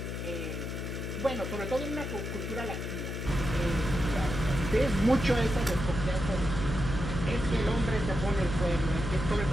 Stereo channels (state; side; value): noise; left; hum, 5 dB below the sound